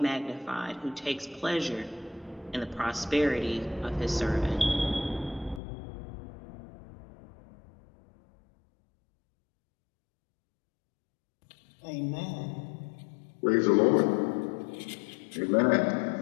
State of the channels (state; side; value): drops out; right; at 5.6 s